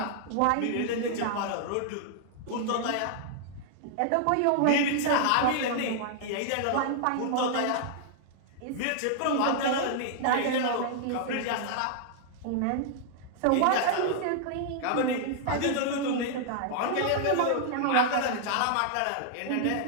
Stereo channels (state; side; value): different; both; correlation -0.01